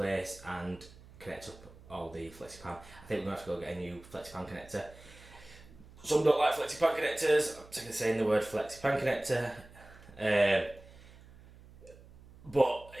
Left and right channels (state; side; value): noise; right; hum, 21 dB below the sound